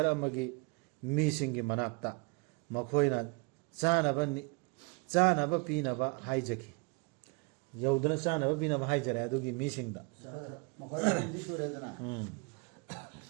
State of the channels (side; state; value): left; quieter; 31.8 dB